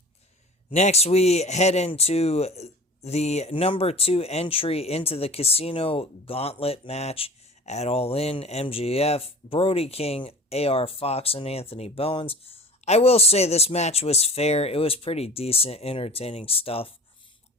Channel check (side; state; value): both; normal; correlation 0.40